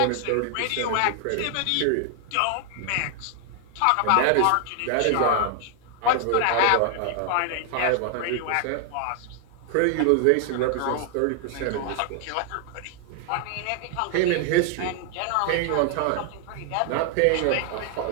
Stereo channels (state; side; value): different; both; correlation 0.00